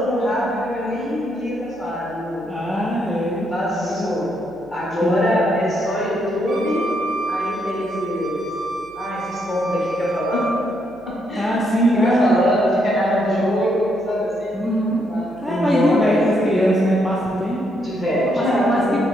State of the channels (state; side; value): noise; right; hum, 28 dB below the sound